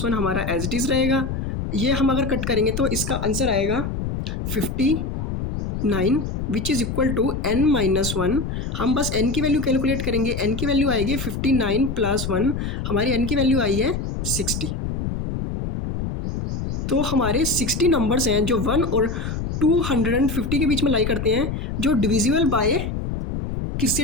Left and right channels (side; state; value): left; noise; rumble, 4 dB below the sound